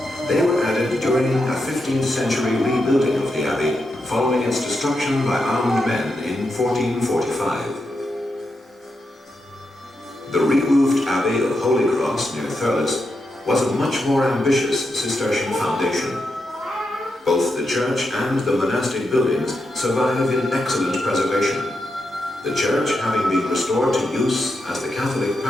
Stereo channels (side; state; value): both; normal; correlation 0.85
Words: They were added during a 15th century rebuilding of the abbey, following its destruction by armed men in 1445. The re-roofed Abbey of Holy Cross near Thurles was a much more ambitious Cistercian foundation. Both the church and the monastic buildings survive in excellent preservation, the church having been restored to use as the Catholic